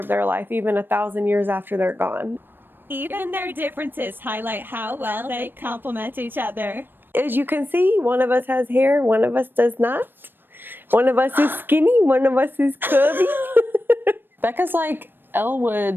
their life even 1,000 years after they're gone. Even their differences highlight how well they complement each other. As you can see, one of us has hair, one of us does not. One of us is skinny, one of us is curvy. Becca's like Elle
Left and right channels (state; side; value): late; left; 0.096 ms